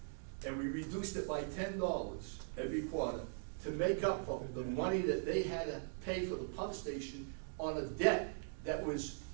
And we reduced it by $10 every quarter to make up for the money that they had to pay for the pump station on a debt that was,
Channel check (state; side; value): silent; left; digital silence